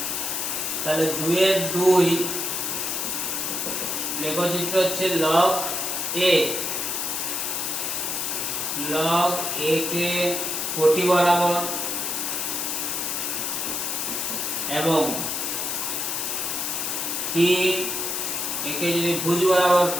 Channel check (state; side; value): noise; left; hiss, 1 dB below the sound